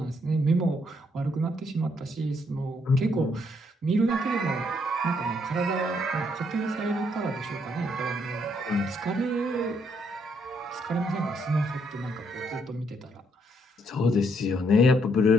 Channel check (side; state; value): both; normal; correlation 0.72